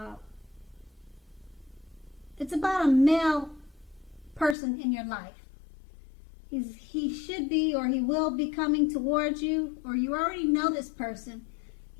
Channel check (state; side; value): drops out; right; at 4.5 s